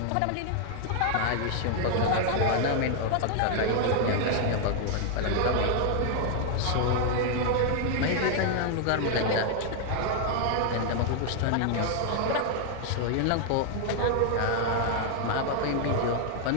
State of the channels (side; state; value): both; different; correlation 0.00